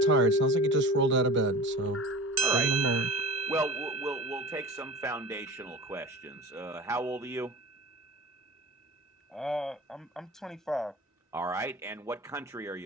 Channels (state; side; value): normal; both; correlation 0.35